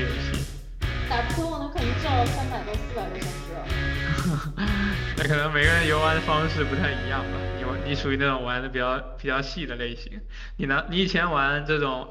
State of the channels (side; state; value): both; identical; correlation 1.00